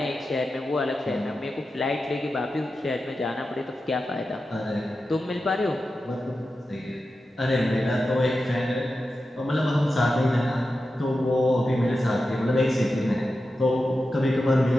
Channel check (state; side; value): normal; both; correlation 0.91